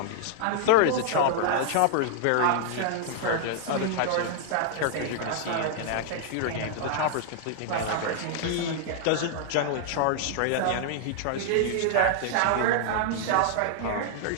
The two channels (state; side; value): different; both; correlation -0.01